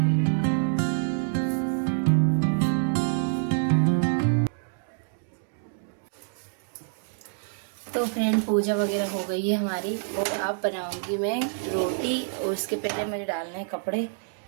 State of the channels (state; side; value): silent; left; digital silence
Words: तो फ्रेंड पूजा वगैरह हो गई है हमारी और अब बनाऊंगी मैं रोटी। और उसके पहले मुझे डालने हैं कपड़े,